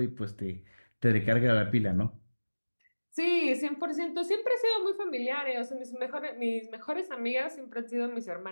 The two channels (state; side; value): inverted; both; correlation -1.00